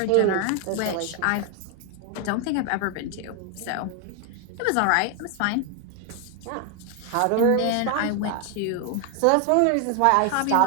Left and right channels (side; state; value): both; different; correlation 0.01